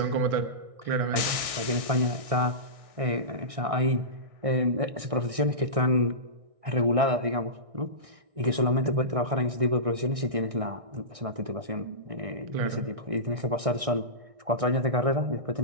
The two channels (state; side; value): late; left; 1.6 ms